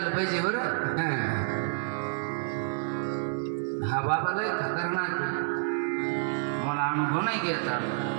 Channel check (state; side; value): silent; left; 58 dB below the other